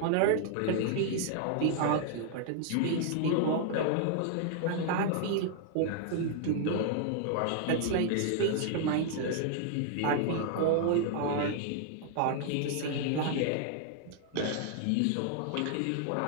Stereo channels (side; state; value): both; different; correlation 0.00